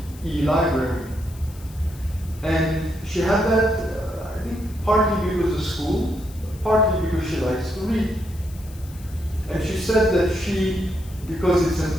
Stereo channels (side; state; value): left; noise; hiss, 22 dB below the sound